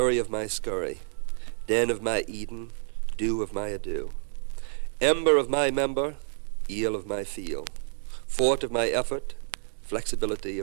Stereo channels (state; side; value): silent; left; 59 dB below the other